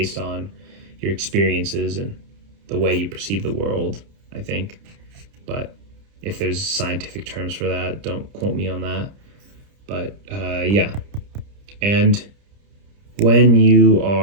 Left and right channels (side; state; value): left; late; 30 ms